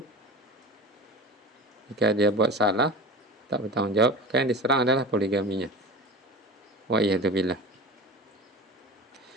jika dia buat salah, tak bertanggung jawab, maka yang diserang adalah poligaminya. Wa iyadzubillah.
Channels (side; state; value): both; normal; correlation 0.32